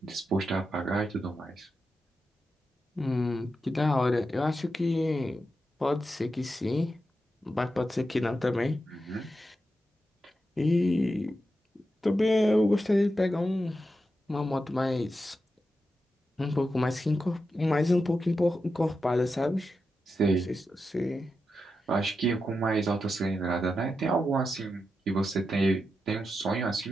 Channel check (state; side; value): normal; both; correlation 0.88